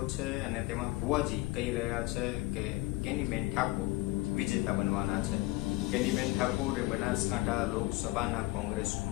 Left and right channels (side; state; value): right; quieter; 20.3 dB